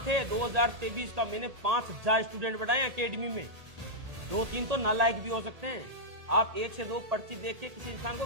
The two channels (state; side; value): late; left; 1.8 ms